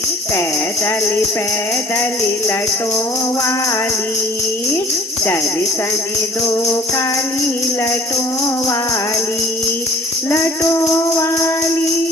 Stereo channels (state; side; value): normal; both; correlation 0.51